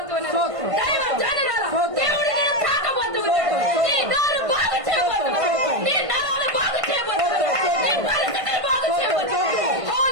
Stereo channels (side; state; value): left; late; 1.5 ms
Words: దైవ జనరాల దేవుడు నేను తాకబోతున్నాడు. నీ నోరు బాగు చేయబోతున్నాడు, నీ నరాలు బాగు చేయబోతున్నాడు, నీ పరిస్థితులు బాగు చేయబోతున్నాడు.